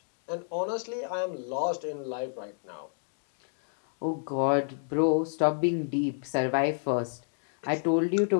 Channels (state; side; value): silent; right; digital silence